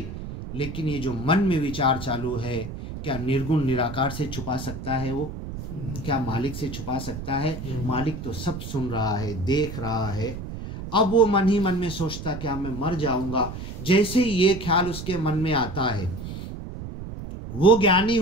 लेकिन ये जो मन में विचार चालू है, क्या निर्गुण निराकार से छुपा सकता है वो? क्या मालिक से छुपा सकता है? मालिक तो सब सुन रहा है, देख रहा है। अब वो मन ही मन में सोचता क्या मैं मर जाऊंगा। जैसे ही ये ख्याल उसके मन में आता है, वो ज्ञानी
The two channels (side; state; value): right; noise; rumble, 9 dB below the sound